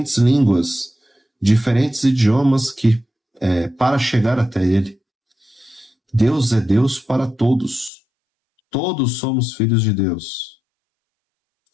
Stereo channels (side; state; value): right; drops out; at 7.9 s